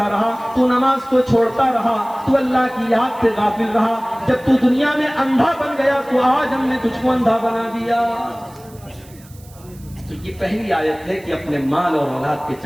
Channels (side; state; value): right; noise; hiss, 25 dB below the sound